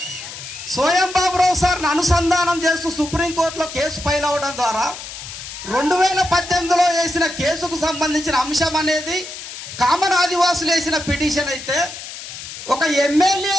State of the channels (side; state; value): left; noise; hiss, 11 dB below the sound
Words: సోయం బాబురావు సార్ని అనుసంధానం చేస్తూ సుప్రీంకోర్టులో కేసు ఫైల్ అవ్వడం ద్వారా 2018లో వేసిన కేసుకు సంబంధించిన అంశం అనేది కామన్ ఆదివాసులు వేసిన పిటిషన్ అయితే, ఒక